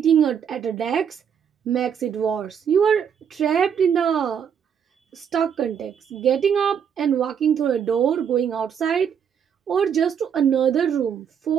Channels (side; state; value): left; quieter; 7.8 dB